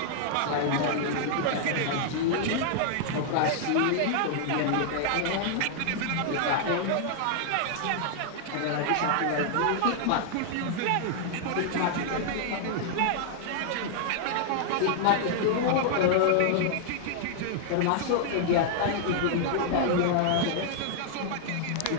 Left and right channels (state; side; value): different; both; correlation -0.01